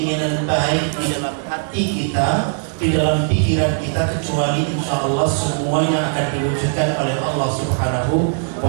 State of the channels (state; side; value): silent; left; 64 dB below the other